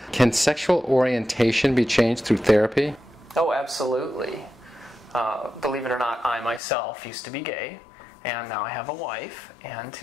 can sexual orientation be changed through therapy? Oh, absolutely. Believe it or not, I myself used to be gay. And now I have a wife and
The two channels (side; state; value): right; drops out; at 6.6 s